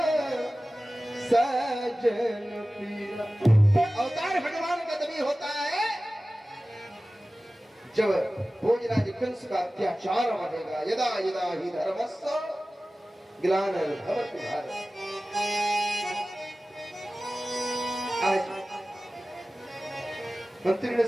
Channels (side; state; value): both; normal; correlation 0.96